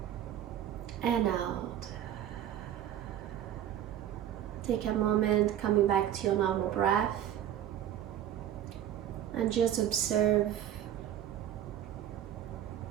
and out. Take a moment coming back to your normal breath and just observe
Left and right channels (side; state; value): left; quieter; 11.0 dB